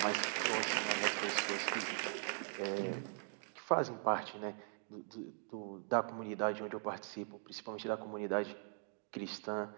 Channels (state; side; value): silent; left; 51 dB below the other